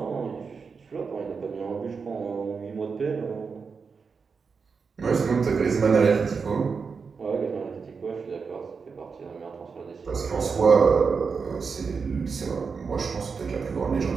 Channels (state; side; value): quieter; left; 5.3 dB